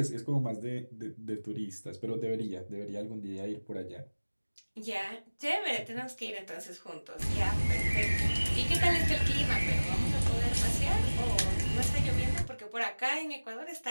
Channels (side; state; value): both; inverted; correlation -1.00